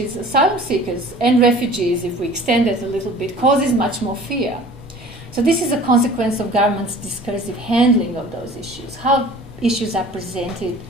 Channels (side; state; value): both; normal; correlation 0.46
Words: is asylum seekers and refugees, if we extend it a little bit, causes much more fear. So this is a consequence of government's discursive handling of those issues, how issues are presented